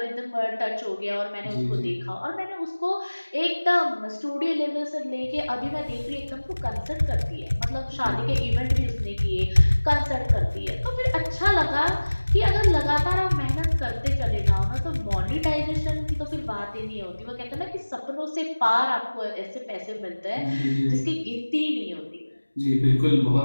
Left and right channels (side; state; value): both; inverted; correlation -1.00